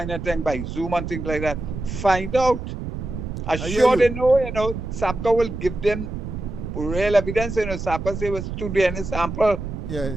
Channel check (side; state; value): right; noise; rumble, 6 dB below the sound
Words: of thing, by Zoom and things like that? Find out. I'm I hear sure you. they know, Sabga will give them real evidence. Sabga say was to the any sample. Yeah.